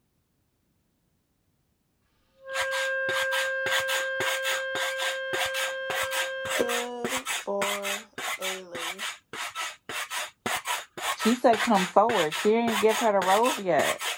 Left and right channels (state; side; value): identical; both; correlation 1.00